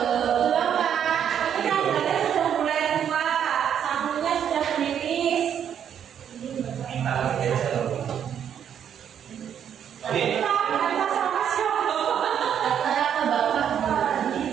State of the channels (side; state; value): left; quieter; 8.9 dB